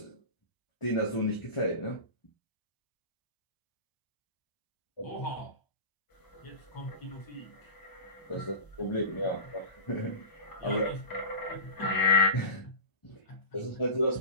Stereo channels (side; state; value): right; late; 1.0 ms